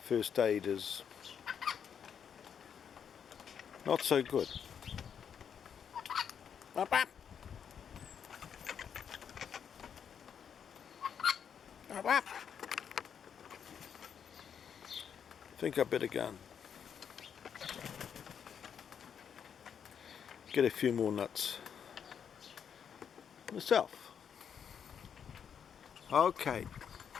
first aid is not so good. Whap whap. Whap whap. I think I better go and get a few more nuts myself. Okay.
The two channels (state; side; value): quieter; right; 7.7 dB